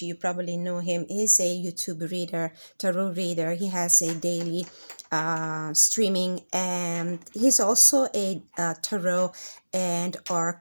you probably know him. He's a YouTube reader, tarot reader. He has a daily streaming, and he's also a tarot and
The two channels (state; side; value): inverted; both; correlation -1.00